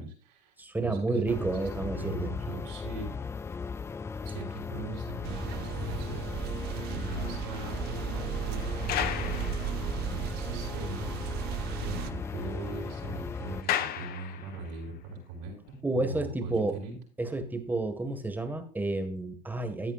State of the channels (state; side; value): normal; both; correlation 0.57